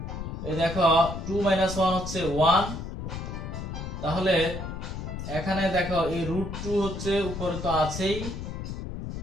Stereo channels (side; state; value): left; noise; rumble, 6 dB below the sound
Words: এই দেখো 2 - 1 হচ্ছে 1, তাহলে এখানে দেখো এই √2 হচ্ছে উপরে তো আছেই,